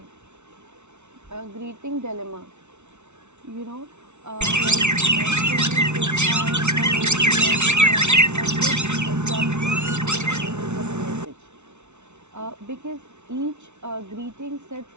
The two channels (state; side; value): late; left; 0.82 ms